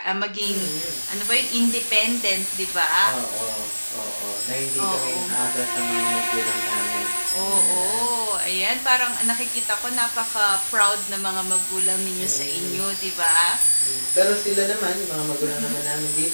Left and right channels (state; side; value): inverted; both; correlation -1.00